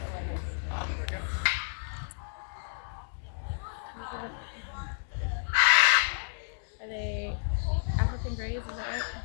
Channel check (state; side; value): silent; right; 57 dB below the other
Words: Are they African greys? Is that right?